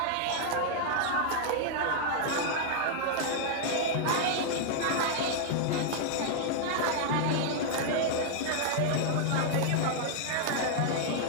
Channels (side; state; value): both; different; correlation -0.01